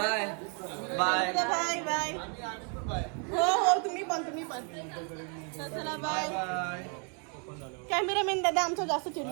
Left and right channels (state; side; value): quieter; left; 38.7 dB